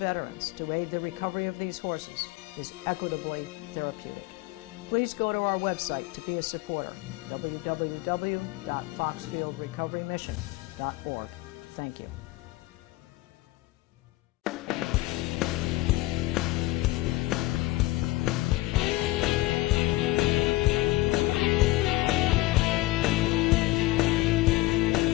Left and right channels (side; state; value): right; quieter; 19.0 dB